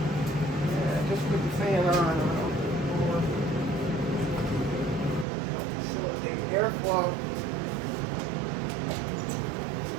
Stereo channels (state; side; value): drops out; left; at 5.2 s